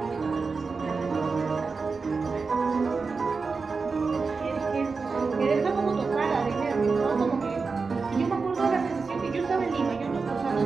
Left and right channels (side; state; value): left; quieter; 4.6 dB